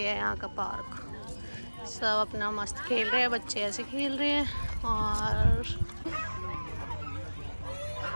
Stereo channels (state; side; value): inverted; both; correlation -1.00